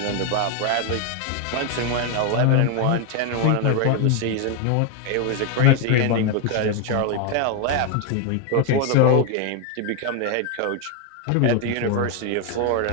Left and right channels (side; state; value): both; different; correlation 0.01